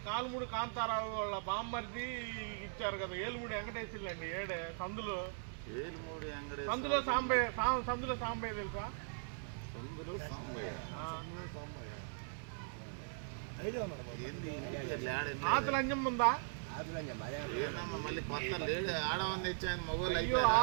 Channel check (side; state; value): left; silent; digital silence